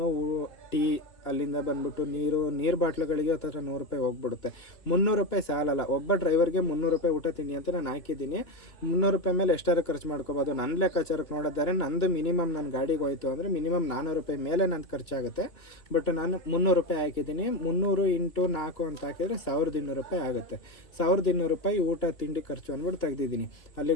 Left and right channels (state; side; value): late; right; 2.6 ms